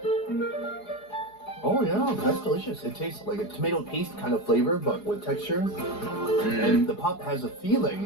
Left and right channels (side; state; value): right; late; 4.8 ms